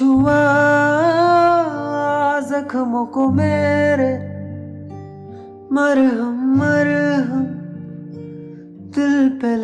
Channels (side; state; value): both; identical; correlation 1.00